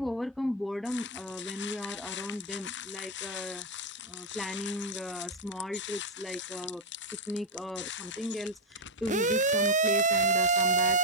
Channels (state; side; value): normal; both; correlation 0.03